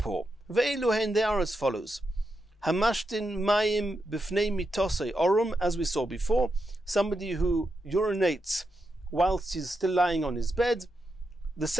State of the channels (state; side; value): normal; both; correlation 0.86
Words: Ve'eluhen, they are as follows. Hamashtin mayim b'fnei mitosei orum, as we saw before, somebody who urinates whilst he's still lying on his bed. The